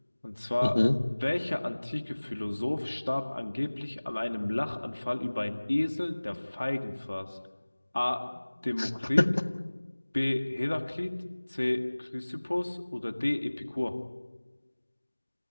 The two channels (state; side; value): inverted; both; correlation -1.00